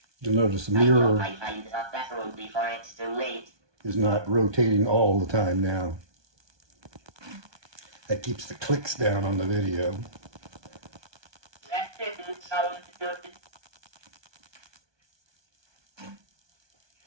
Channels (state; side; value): late; left; 1.2 ms